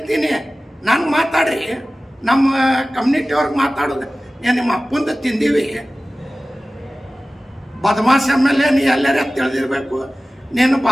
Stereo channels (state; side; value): normal; both; correlation 0.97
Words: ನಾನು ಮಾತಾಡ್ರಿ. ನಮ್ಮ ಕಮ್ಯುನಿಟಿಯವ್ರಿಗೆ ಮಾತಾಡೋದು ಏನು ನಿಮ್ಮ ಅಪ್ಪಂದು ತಿಂದೀವಿ? ಬದಮಾಶ್ MLA ನೀ ಎಲ್ಲರ ತಿಳಿದಿರ್ಬೇಕು. ನಿನ್ನ